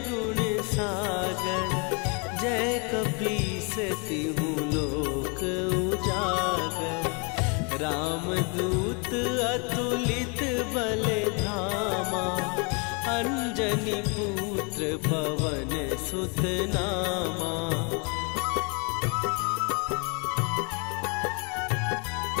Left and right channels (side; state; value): right; quieter; 34.1 dB